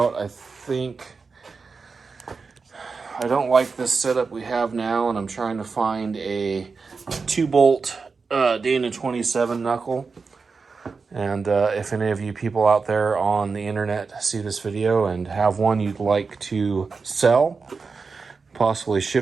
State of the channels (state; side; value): quieter; left; 4.7 dB